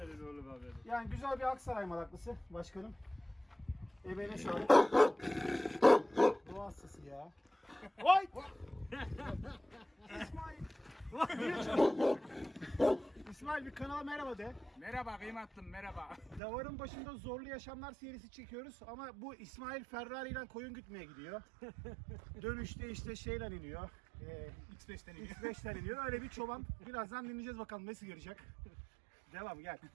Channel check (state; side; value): drops out; left; at 16.4 s